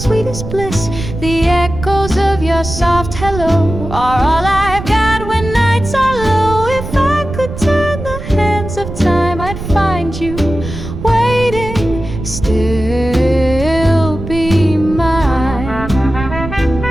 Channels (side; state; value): right; noise; rumble, 8 dB below the sound